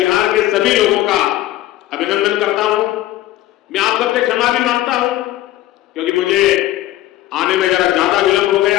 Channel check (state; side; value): quieter; right; 14.8 dB